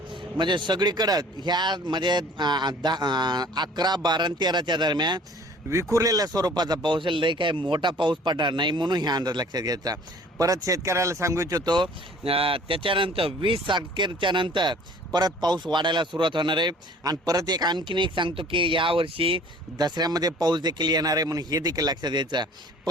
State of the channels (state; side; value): normal; both; correlation 0.51